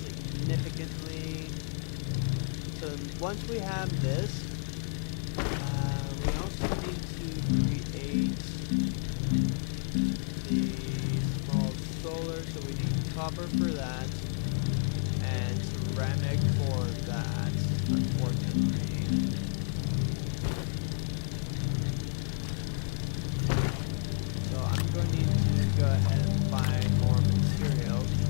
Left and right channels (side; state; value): right; silent; digital silence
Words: So once we have this, we also need to create the small solar, so we need copper for that and ceramic for that, unfortunately. So I'm going to need to go ahead and find more materials